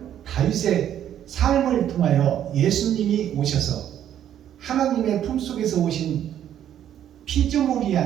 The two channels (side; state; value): left; quieter; 10.5 dB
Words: 다윗의 삶을 통하여 예수님이 오셔서 하나님의 품속에서 오신 피조물이